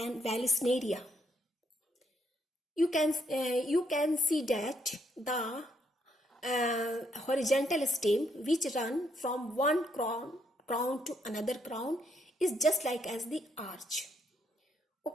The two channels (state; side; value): normal; both; correlation 0.73